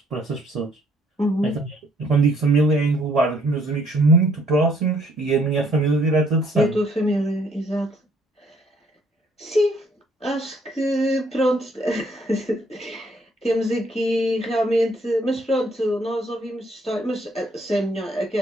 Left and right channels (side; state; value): both; normal; correlation 0.65